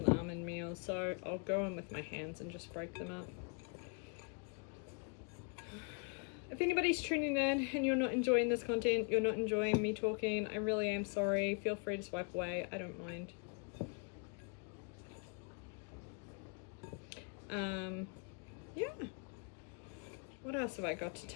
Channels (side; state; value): right; quieter; 37.6 dB